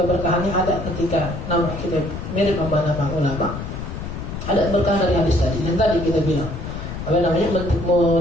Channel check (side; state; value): left; noise; rumble, 7 dB below the sound